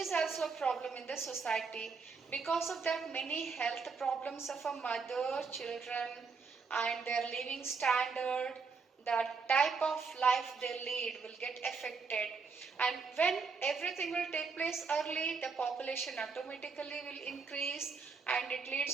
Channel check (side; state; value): left; quieter; 4.9 dB